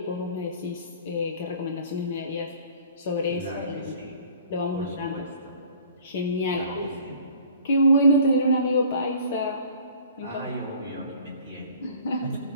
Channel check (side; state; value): both; inverted; correlation -0.50